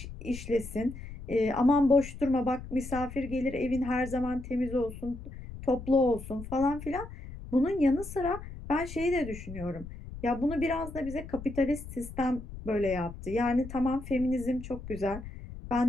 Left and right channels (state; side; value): noise; left; rumble, 12 dB below the sound